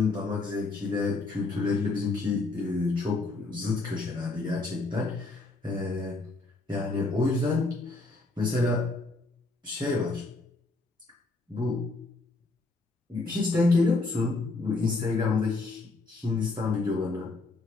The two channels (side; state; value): right; quieter; 3.3 dB